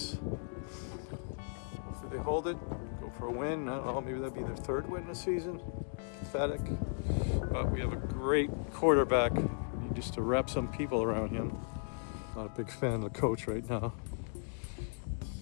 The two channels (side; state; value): right; silent; digital silence